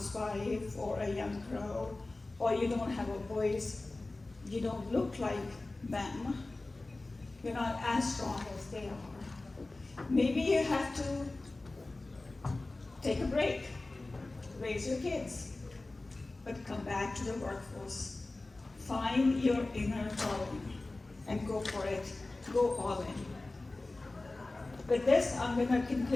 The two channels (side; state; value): right; quieter; 3.1 dB